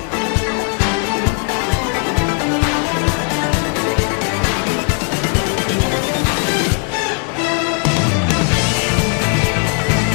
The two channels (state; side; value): quieter; right; 38.5 dB